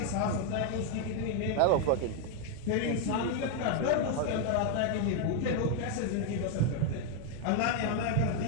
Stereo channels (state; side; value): different; both; correlation 0.00